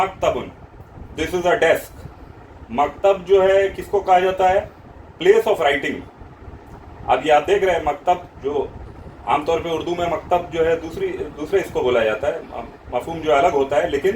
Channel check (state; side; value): identical; both; correlation 1.00